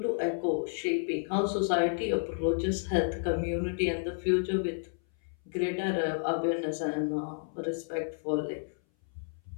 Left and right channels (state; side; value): silent; right; 57 dB below the other